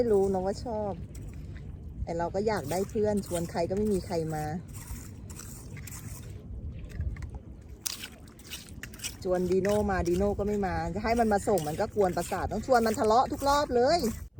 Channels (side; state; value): both; identical; correlation 1.00